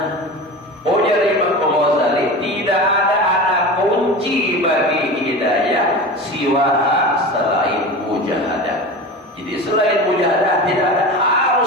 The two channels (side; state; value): both; normal; correlation 0.30